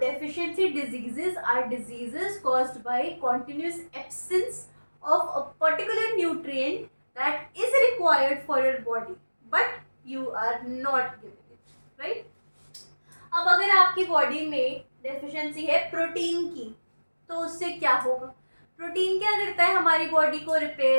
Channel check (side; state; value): both; inverted; correlation -1.00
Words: deficiency diseases are diseases caused by continuous absence of a particular nutrient that is required for your body, but you are not giving it, right? अब अगर आपकी बॉडी में डेफिशिएंसी है प्रोटीन की, तो उससे क्या होगा, प्रोटीन क्या करता है, हमारी बॉडी को